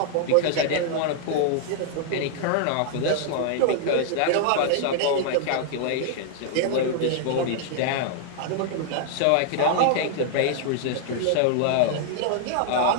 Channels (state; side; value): different; both; correlation -0.01